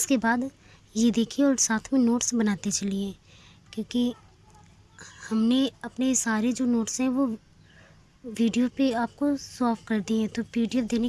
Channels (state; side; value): identical; both; correlation 1.00